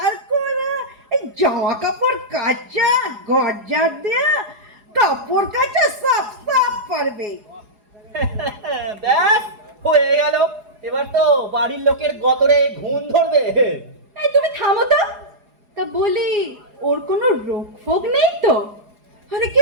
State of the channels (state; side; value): late; left; 4.8 ms